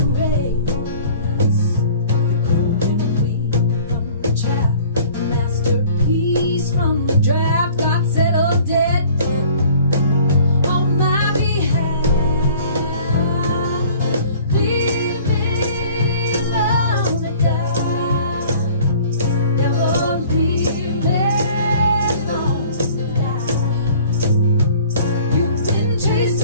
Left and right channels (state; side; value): inverted; both; correlation -0.50